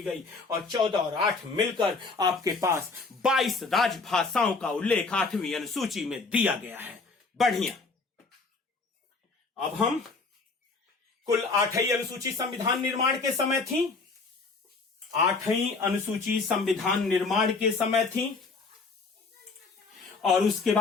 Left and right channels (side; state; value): right; quieter; 4.1 dB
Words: गई। और 14 और 8 मिलकर आपके पास 22 राजभाषाओं का उल्लेख 8वीं अनुसूची में दिया गया है। बढ़िया। अब हम कुल 8वीं अनुसूची संविधान निर्माण के समय थी। 8वीं अनुसूची संविधान निर्माण के समय थी और उसके